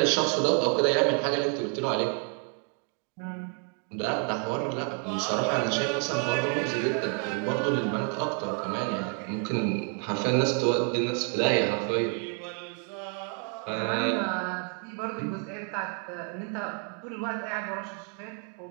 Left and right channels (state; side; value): quieter; left; 38.0 dB